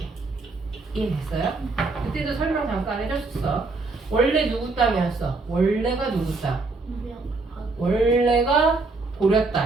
이해됐어요? 그때도 설명 잠깐 해줬었어. 원래 누구 땅이었어? 원래가 누구 땅? 원래가 고려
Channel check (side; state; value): left; quieter; 3.6 dB